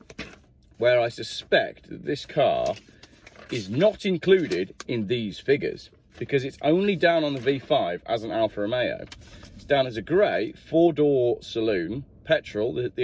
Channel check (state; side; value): identical; both; correlation 1.00